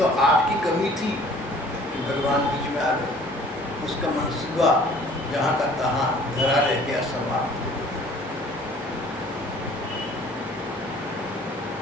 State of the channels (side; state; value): both; normal; correlation 0.52